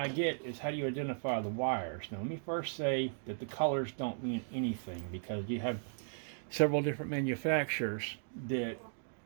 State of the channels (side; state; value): left; silent; digital silence